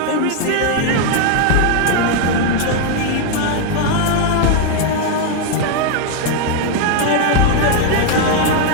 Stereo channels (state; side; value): different; both; correlation 0.01